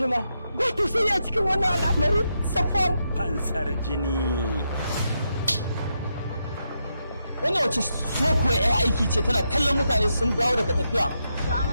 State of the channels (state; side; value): inverted; both; correlation -0.83